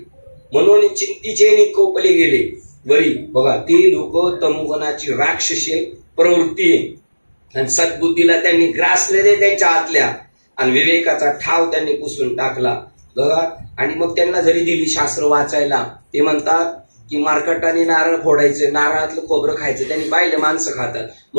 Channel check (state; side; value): inverted; both; correlation -1.00